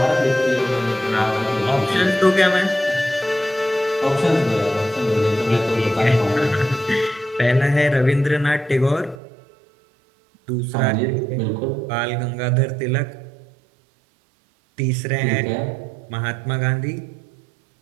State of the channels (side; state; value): left; drops out; at 9.2 s